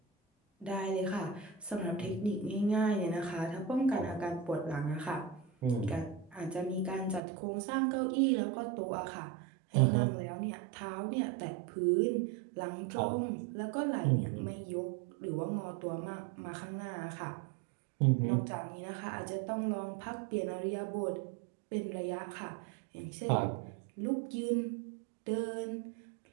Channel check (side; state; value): left; drops out; at 7.2 s